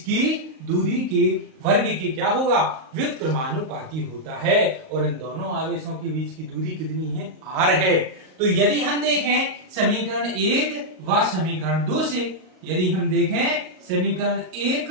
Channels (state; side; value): late; left; 38 ms